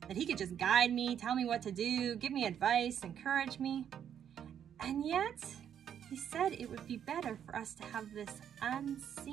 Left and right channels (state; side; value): quieter; left; 9.0 dB